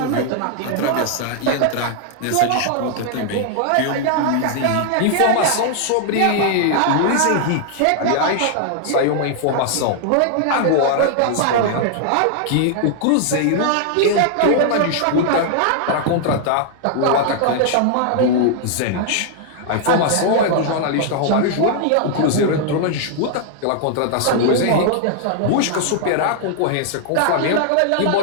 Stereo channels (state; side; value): different; both; correlation 0.00